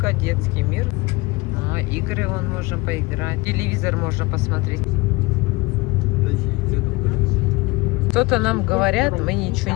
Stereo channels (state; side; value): quieter; right; 23.7 dB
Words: детский мир. Игры вон можно поиграть. Телевизор можно посмотреть. Что-то нам говорят, мы ничего